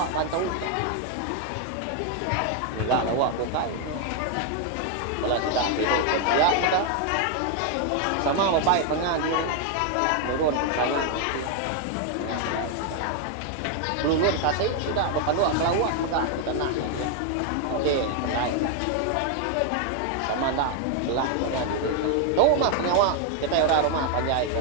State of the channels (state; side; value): different; both; correlation 0.00